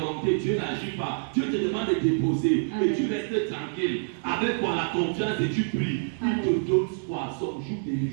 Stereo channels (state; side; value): silent; left; digital silence